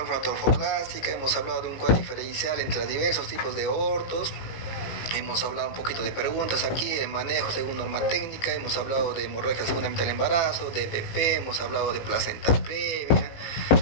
hemos hablado de un cuadro diferencial entre los diversos tipos de abortos. Hemos hablado un poquito de preguntas aquí, de manejo según norma técnica, hemos hablado de hemorragia segunda mitad del embarazo, de DPP, hemos hablado de placenta previa,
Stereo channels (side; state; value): right; late; 18 ms